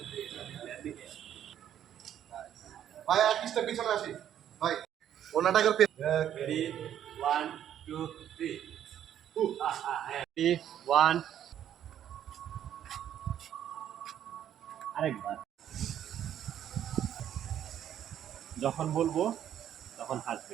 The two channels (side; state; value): left; quieter; 10.5 dB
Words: ভাই আর পিসটা পিছনে আসি ভাই ওনাটাকে ready? One two three. Ready? One. আরেকবার। যখন বলবো তখন